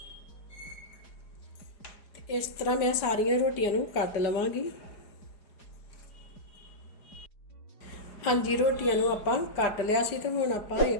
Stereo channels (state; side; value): late; right; 4.9 ms